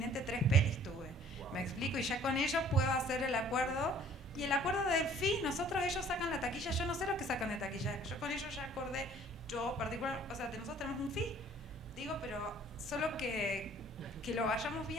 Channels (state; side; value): normal; both; correlation 0.54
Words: 3 pelis tuve, me explico, y ya con ellos puedo hacer el acuerdo. Y el acuerdo del fee, ellos sacan la taquilla, yo no sé lo que sacan de taquilla, yo con ellos ya acordé, yo particular, o sea, nosotros tenemos un fee, digo, pero solo que lo vayamos